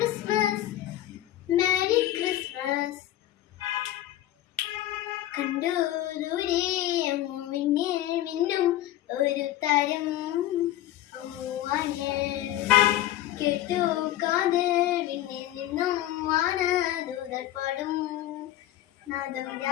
merry Christmas. കണ്ടു ദൂരെ മിന്നിൽ മിന്നും ഒരു താരം കേട്ടു കാതിൽ വിണ്ണിൽ നിന്നും വാനദൂതർ പാടും നാദം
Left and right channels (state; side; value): quieter; right; 13.7 dB